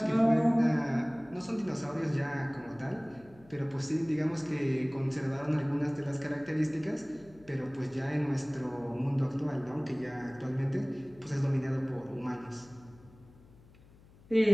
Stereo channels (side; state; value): left; noise; hum, 24 dB below the sound